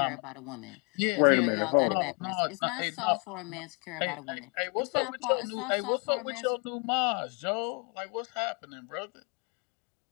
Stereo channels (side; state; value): right; quieter; 34.7 dB